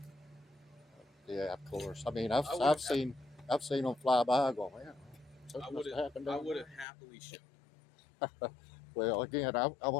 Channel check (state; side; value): drops out; right; at 6.9 s